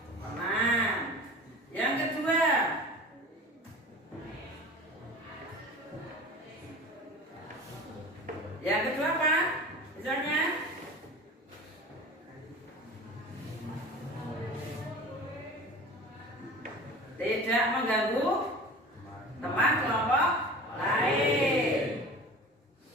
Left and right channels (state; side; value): normal; both; correlation 0.38